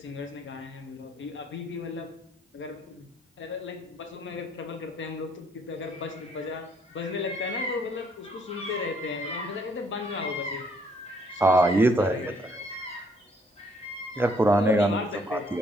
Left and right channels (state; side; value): normal; both; correlation 0.66